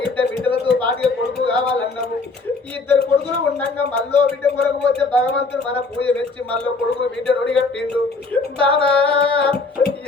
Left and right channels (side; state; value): right; quieter; 3.9 dB